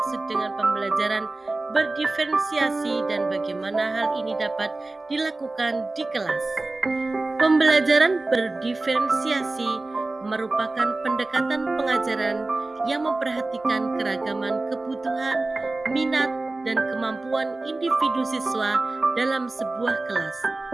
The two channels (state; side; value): quieter; left; 3.1 dB